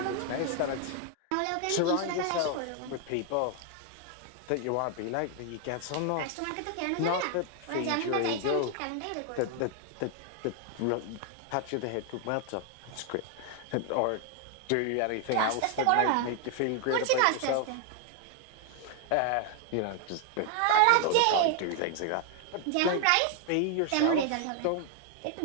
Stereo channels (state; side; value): different; both; correlation 0.00